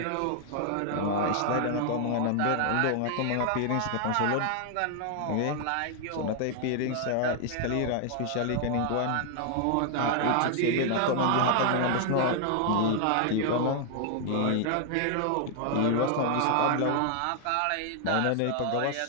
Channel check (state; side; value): different; both; correlation 0.00